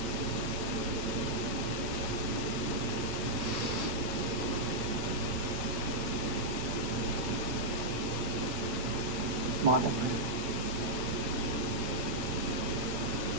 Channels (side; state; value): left; late; 7.9 ms